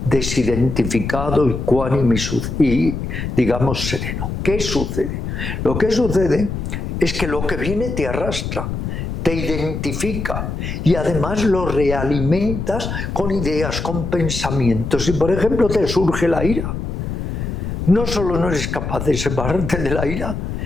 desidentificado, ecuánime y, digamos, sereno? ¿Qué sucede? Lo que sucede es que lo que viene te arrastra, te identifica y además lo realimentas con ideas, con pensamientos. Si por ejemplo te surge la ira, no solo no eres capaz de separarte de la ira,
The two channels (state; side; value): noise; left; rumble, 4 dB below the sound